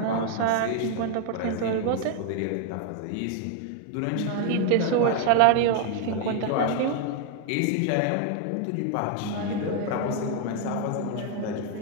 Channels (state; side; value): different; both; correlation 0.00